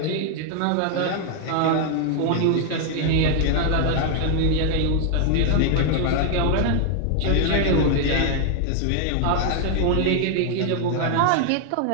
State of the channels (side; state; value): both; different; correlation 0.00